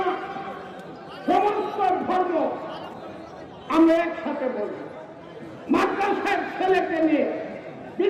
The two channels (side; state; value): both; identical; correlation 1.00